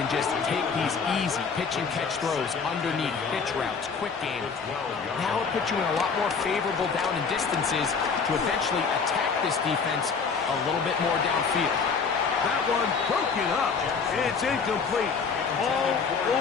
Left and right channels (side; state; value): right; quieter; 5.5 dB